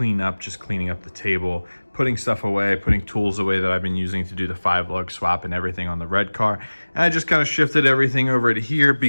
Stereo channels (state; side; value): inverted; both; correlation -1.00